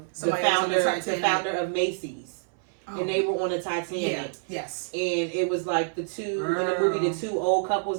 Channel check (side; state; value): left; silent; 60 dB below the other